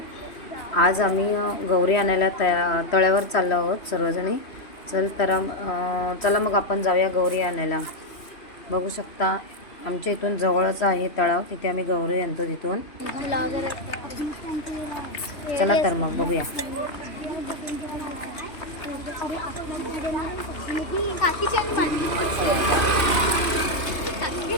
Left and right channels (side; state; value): right; late; 3.0 ms